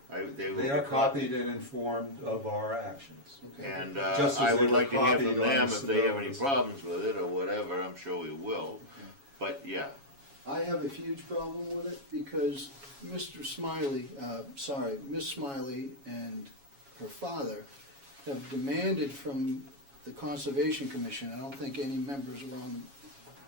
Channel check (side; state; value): left; late; 7.2 ms